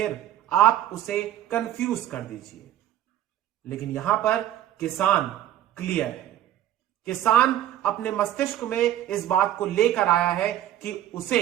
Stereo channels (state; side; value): quieter; left; 12.3 dB